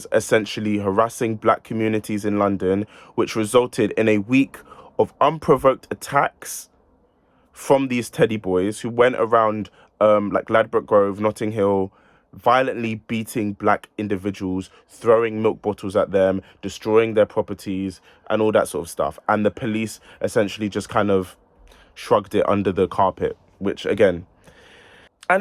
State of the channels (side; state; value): both; identical; correlation 1.00